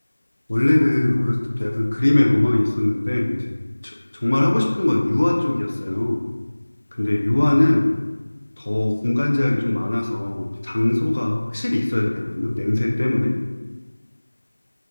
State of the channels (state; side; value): inverted; both; correlation -1.00